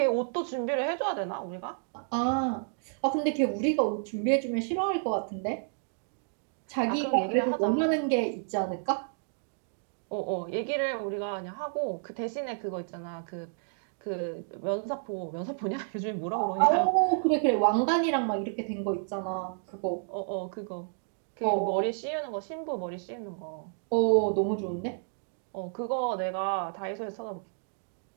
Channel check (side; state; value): left; silent; digital silence